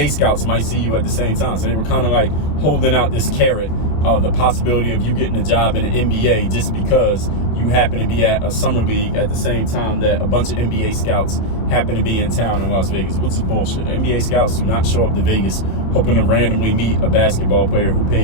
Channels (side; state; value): right; late; 26 ms